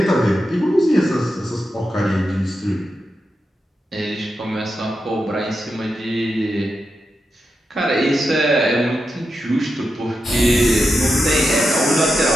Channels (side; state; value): both; normal; correlation 0.88